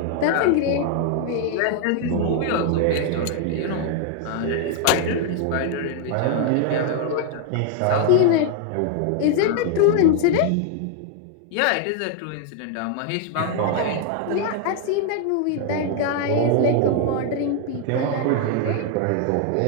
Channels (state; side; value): different; both; correlation 0.00